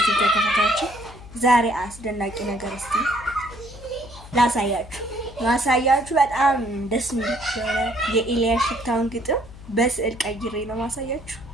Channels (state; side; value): noise; left; hum, 17 dB below the sound